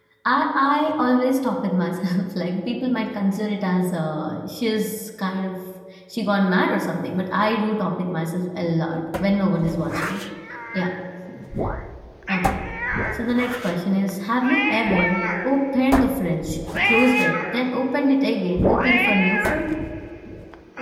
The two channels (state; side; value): identical; both; correlation 1.00